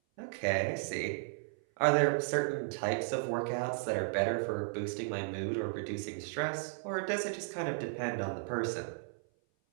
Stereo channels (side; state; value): left; silent; 55 dB below the other